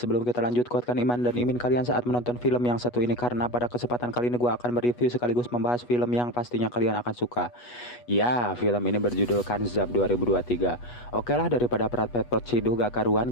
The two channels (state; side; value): late; right; 8.2 ms